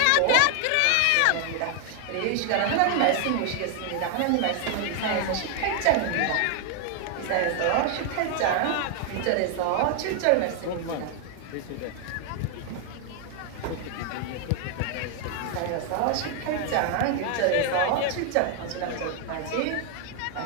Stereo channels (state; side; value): different; both; correlation 0.00